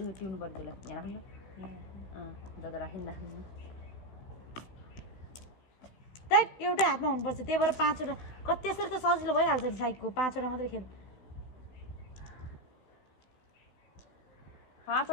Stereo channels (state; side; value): late; right; 16 ms